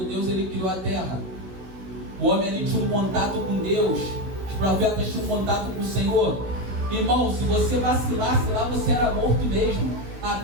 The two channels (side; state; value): left; late; 16 ms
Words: Deus ele criou a terra. O homem ali tinha um contato com Deus. Os profetas tinham um contato com o Senhor. Irmão, se você vacilasse lá, você era morto mesmo. A